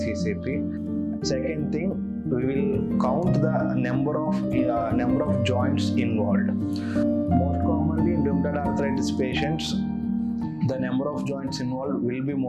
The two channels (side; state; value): both; identical; correlation 1.00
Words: Second thing, we will count the number of joints involved. Most commonly in rheumatoid arthritis patients, the number of joints involved will be